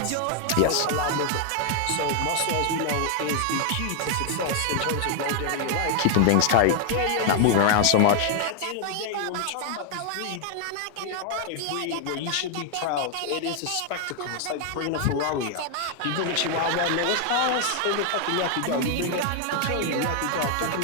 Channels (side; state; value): both; different; correlation 0.00